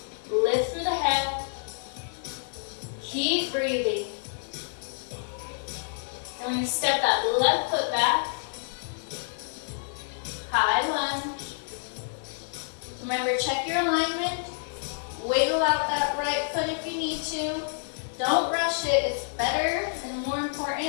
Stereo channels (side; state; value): right; silent; digital silence